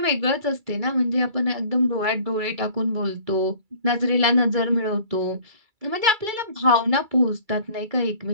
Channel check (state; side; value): late; left; 2.3 ms